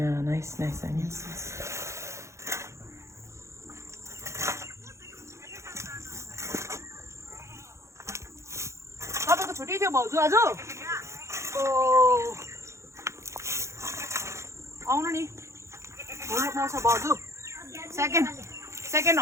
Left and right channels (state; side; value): late; left; 0.14 ms